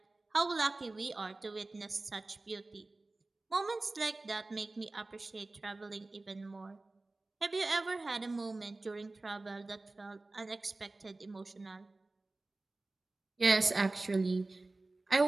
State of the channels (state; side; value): quieter; left; 3.1 dB